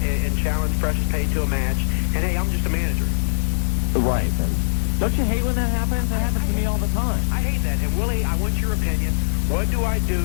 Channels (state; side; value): silent; right; digital silence